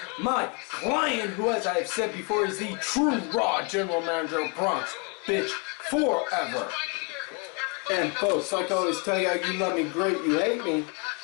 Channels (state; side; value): quieter; right; 34.8 dB